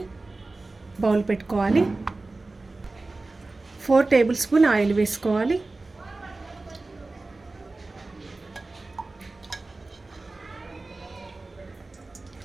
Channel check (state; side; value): quieter; left; 3.3 dB